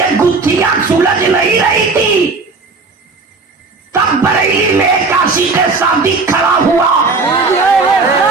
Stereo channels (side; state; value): left; quieter; 4.0 dB